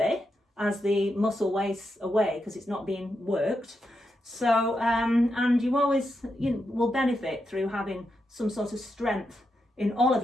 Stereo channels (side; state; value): both; normal; correlation 0.85